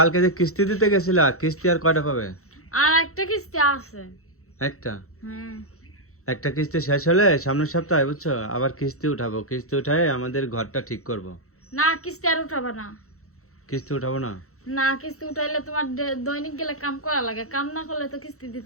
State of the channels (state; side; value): late; right; 0.64 ms